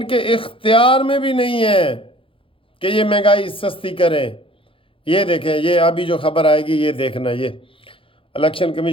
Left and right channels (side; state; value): right; late; 0.26 ms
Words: کے اختیار میں بھی نہیں ہے کہ یہ مہنگائی سستی کریں۔ یہ دیکھیں، یہ ابھی جو خبر آئے گی یہ دیکھنا، یہ الیکشن